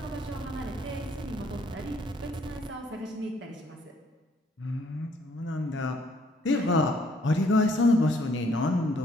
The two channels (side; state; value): both; normal; correlation 0.65